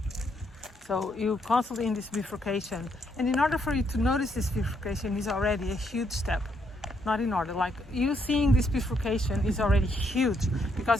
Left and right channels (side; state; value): both; normal; correlation 0.75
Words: So you're constantly in this bifurcation, and in order for you to notice this bifurcation is already a huge step. Not in order, like you seeing this bifurcation is already huge, because